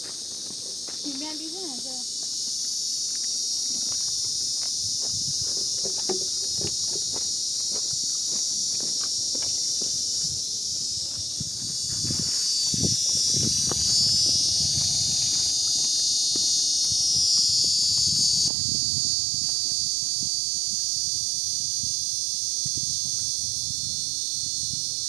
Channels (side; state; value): left; drops out; at 18.5 s